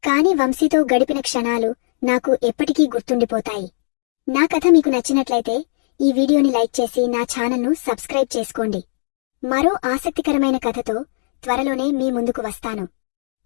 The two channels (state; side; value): silent; right; digital silence